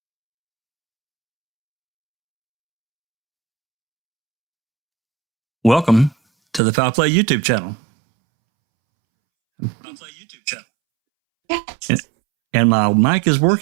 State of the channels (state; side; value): drops out; left; at 6.6 s